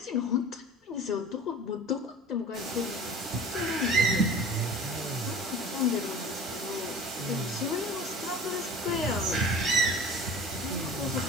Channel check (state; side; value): normal; both; correlation 0.40